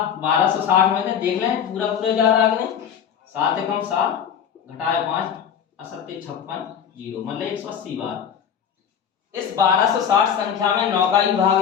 1260 में देख लें, पूरा जा रहा है कि नहीं? 7 एकम 7 घटाए 5 असत्य 56 0, मतलब 180 बार। इस 1260 संख्या में 9 का ही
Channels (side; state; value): right; quieter; 8.2 dB